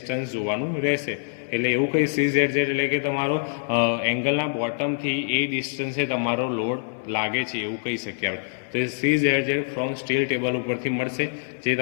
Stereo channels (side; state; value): right; silent; 62 dB below the other